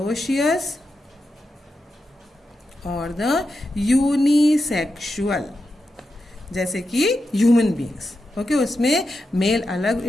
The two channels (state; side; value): normal; both; correlation 0.88